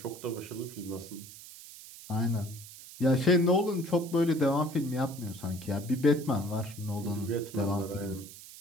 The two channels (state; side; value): noise; right; hiss, 16 dB below the sound